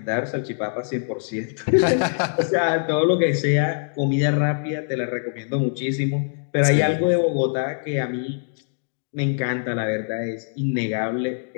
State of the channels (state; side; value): silent; right; digital silence